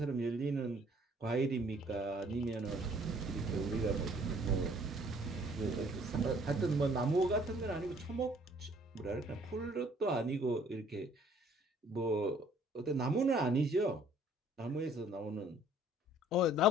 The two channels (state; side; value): normal; both; correlation 0.58